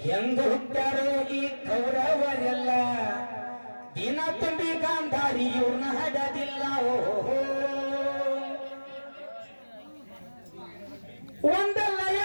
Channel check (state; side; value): inverted; both; correlation -1.00